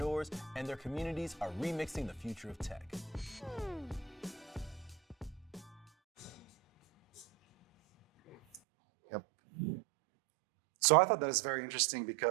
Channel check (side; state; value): left; drops out; at 8.6 s